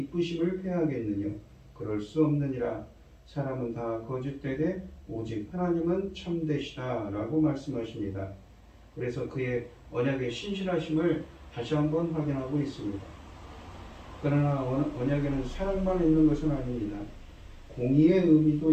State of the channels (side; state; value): both; identical; correlation 1.00